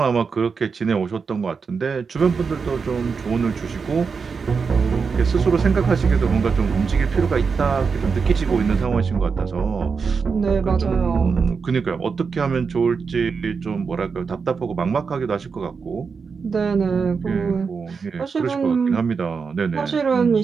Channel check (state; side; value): quieter; left; 5.4 dB